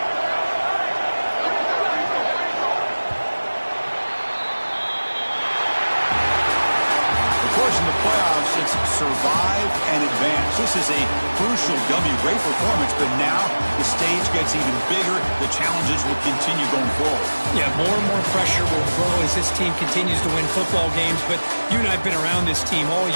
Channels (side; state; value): both; inverted; correlation -1.00